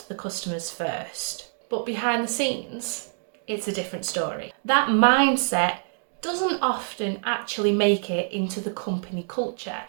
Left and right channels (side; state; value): left; silent; 61 dB below the other